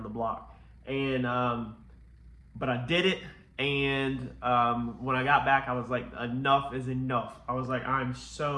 the block. And but I did it, and when I got back, I was like, enough is enough. I was like, I'm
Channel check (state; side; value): identical; both; correlation 1.00